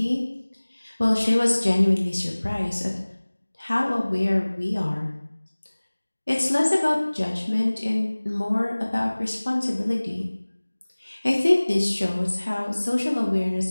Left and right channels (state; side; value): inverted; both; correlation -1.00